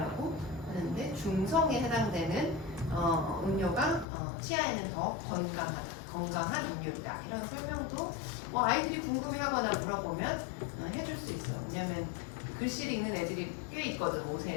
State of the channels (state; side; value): drops out; right; at 4.0 s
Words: 하는데 중성에 해당되는 음료가 치아에는 더 건강한 음료이다. 이런 설명도 뭐 아이들이 궁금해하거나 물어보면 해줄 수 있어. 왜냐면 글씨를 읽는 애들이 꽤 있거든.